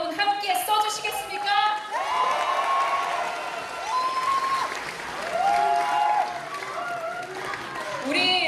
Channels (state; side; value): identical; both; correlation 1.00